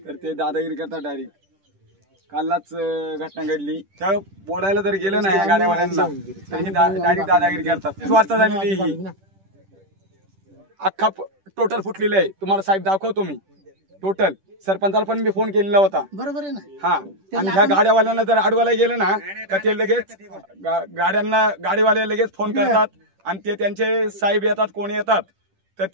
तर ते दादागिरी करतात डायरेक्ट. कालच घटना घडली, त्या बोलायला जर गेलं ना या गाड्यावाल्यांना तर डायरेक्ट दादागिरी करतात. स्वार्थ झालेली ही अख्खा टोटल फुटलेलं आहे. तुम्हाला साहेब दाखवतो मी टोटल. सरपंचाला पण मी फोन केलेला होता. बरोबर आहे ना. हा, आणि ह्या गाड्यावाल्यांना जर अडवायला गेलं ना तर ते लगेच गाडीवाले लगेच फोन करतात आणि ते त्यांचे साहेब येतात, कोण येतात तर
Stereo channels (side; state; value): left; late; 10 ms